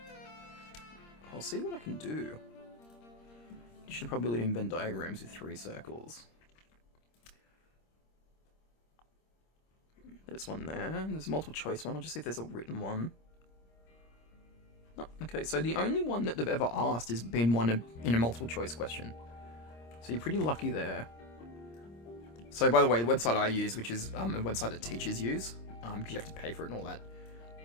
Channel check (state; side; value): late; right; 26 ms